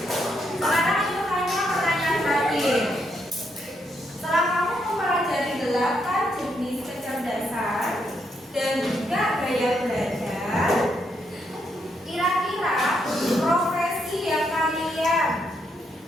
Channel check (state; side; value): normal; both; correlation 0.77